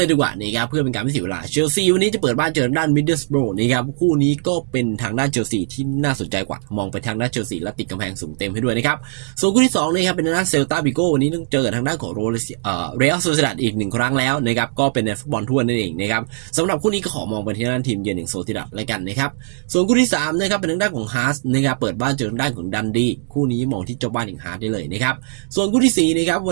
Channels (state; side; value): silent; left; 64 dB below the other